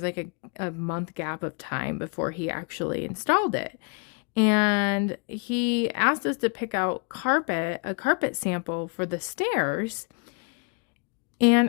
like a month gap of time before he actually installed it. And he asked us to pick out a carpet sample for the stairs.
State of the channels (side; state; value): right; quieter; 34.1 dB